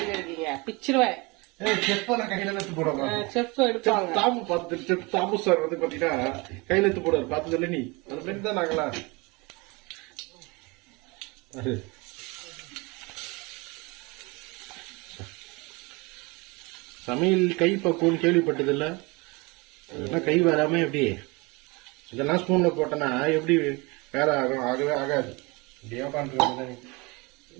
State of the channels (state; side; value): quieter; left; 26.5 dB